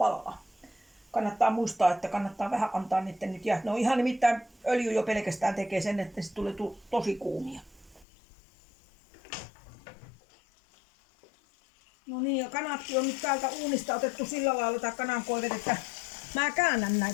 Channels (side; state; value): right; drops out; at 8.1 s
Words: Kannattaa muistaa, että kannattaa vähän antaa niiden nyt jäähtyä. No ihan nimittäin öljy jo pelkästään tekee sen, että se tulee tosi kuumia. No niin, ja kanatkin on nyt täältä uunista otettu sillä lailla, tai kanankoivet, että mä käännän